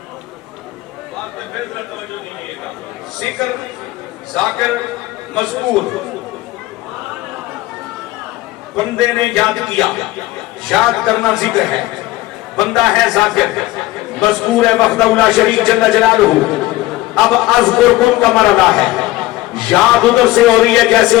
ذکر، ذاکر، مذکور. بندے نے یاد کیا، یاد کرنا ذکر ہے. بندہ ہے ذاکر، مذکور ہے وحدہ لا شریک جل جلالہ. اب اذکرکم کا مرحلہ ہے، یاد ادھر سے ہو رہی ہے جیسے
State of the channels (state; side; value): quieter; right; 17.9 dB